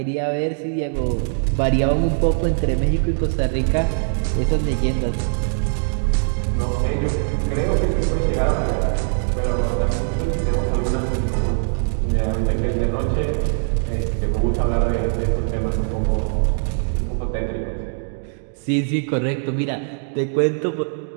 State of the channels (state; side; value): silent; left; digital silence